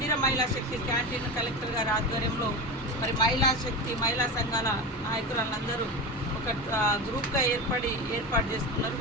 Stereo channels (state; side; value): normal; both; correlation 0.23